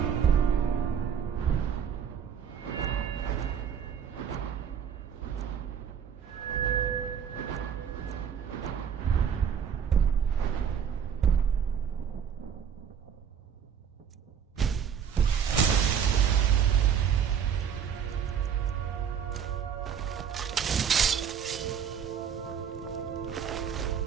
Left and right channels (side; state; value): left; quieter; 7.8 dB